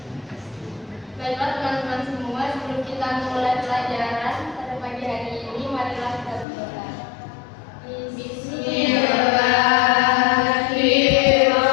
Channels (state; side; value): drops out; right; at 6.5 s